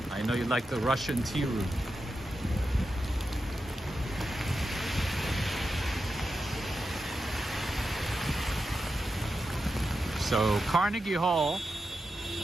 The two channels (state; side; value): normal; both; correlation 0.89